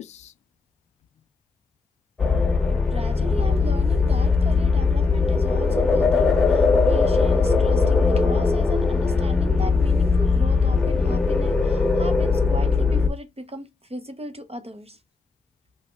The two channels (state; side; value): quieter; right; 3.9 dB